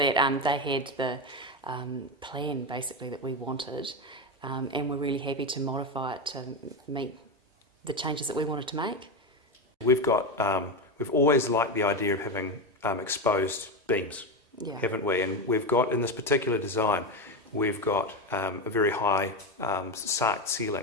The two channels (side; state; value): both; normal; correlation 0.14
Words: they had the plan basically that we wanted, and we're really happy to modify it to meet the changes that we wanted to make. We've always liked the idea of having exposed beams, yeah, haven't we? And we've got, in this particular design, we've got a very high sarked